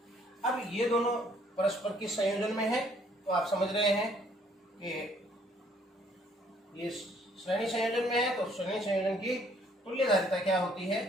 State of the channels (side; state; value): both; normal; correlation 0.63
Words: अब ये दोनों परस्पर किस संयोजन में है तो आप समझ रहे हैं कि ये श्रेणी संयोजन में है। तो श्रेणी संयोजन की तुल्य धारिता क्या होती